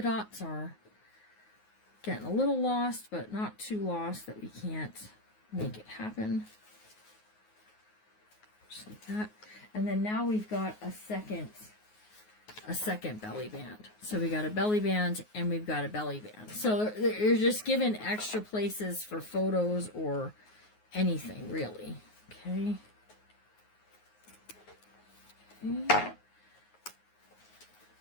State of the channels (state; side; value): late; right; 9.5 ms